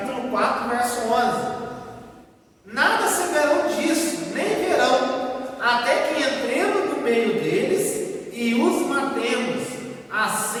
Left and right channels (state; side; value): identical; both; correlation 1.00